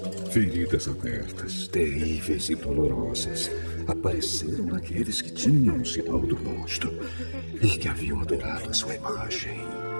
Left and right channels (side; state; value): both; inverted; correlation -1.00